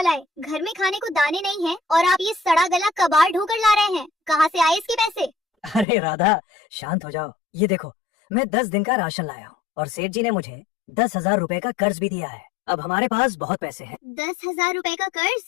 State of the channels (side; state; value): right; drops out; at 5.9 s